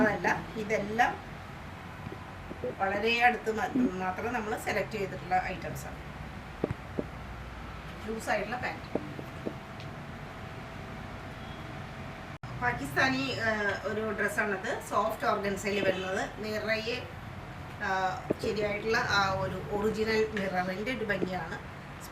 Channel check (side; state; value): both; identical; correlation 1.00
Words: ഇതെല്ലാം വളരെ അടുത്ത് മാത്രം നമ്മൾ സെലക്ട് ചെയ്തിട്ടുള്ള ഐറ്റംസാണ്. ലൂസായിട്ടുള്ള പാൻറ്റ്. പാകിസ്ഥാനി ഒരു ഡ്രസ്സാണത്. സോഫ്റ്റ് ഓർഗൻസയിൽ വരുന്നത്. നിറയെ ശരിയായിട്ടുള്ള ആ ഒരു ഒറിജിനൽ മിററിൻ്റെ ഒരു ഭംഗിയാണ്.